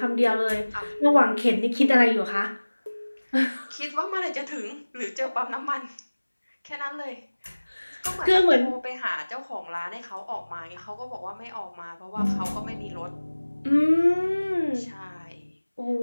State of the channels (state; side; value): inverted; both; correlation -1.00